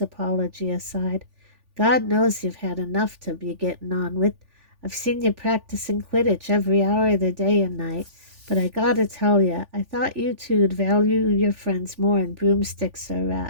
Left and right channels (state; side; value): late; left; 3.4 ms